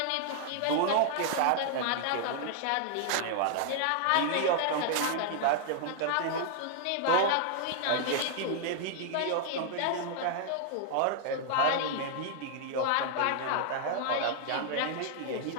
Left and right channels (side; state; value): both; different; correlation 0.00